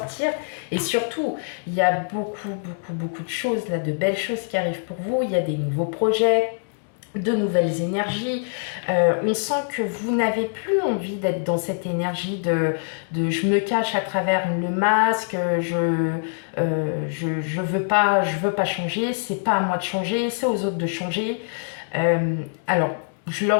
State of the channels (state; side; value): silent; right; digital silence